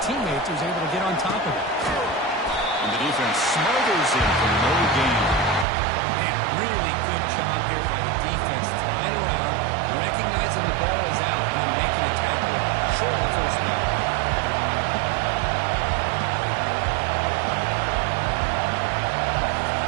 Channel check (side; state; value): left; drops out; at 5.7 s